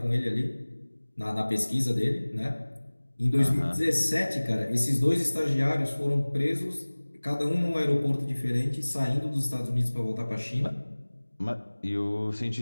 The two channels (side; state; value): both; inverted; correlation -1.00